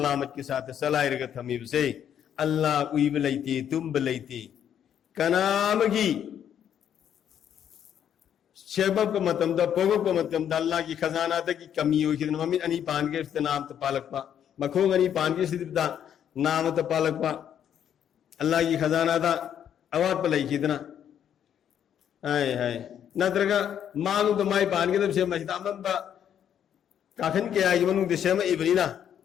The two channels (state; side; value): quieter; right; 9.4 dB